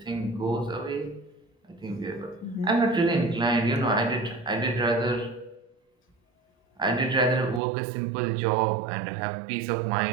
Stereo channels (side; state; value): left; drops out; at 7.6 s